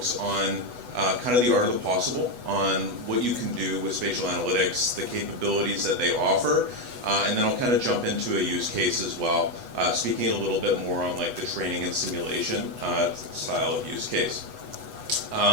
on kind of the art of the possible, on what you can do with spatial analytics, the capabilities that they offer, and then I'll kind of jump into a use case as well, speaking a little bit more on like the training and simulation style of use case.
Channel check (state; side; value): late; left; 8.1 ms